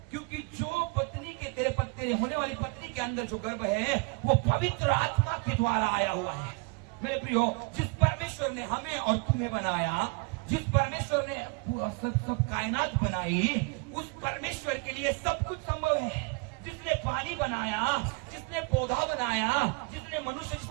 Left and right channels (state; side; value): quieter; left; 31.0 dB